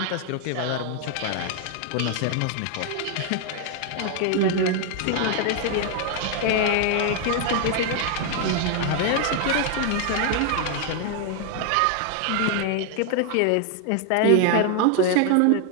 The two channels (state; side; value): different; both; correlation 0.00